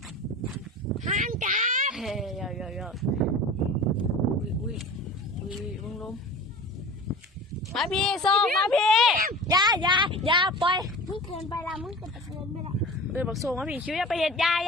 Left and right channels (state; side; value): normal; both; correlation 0.36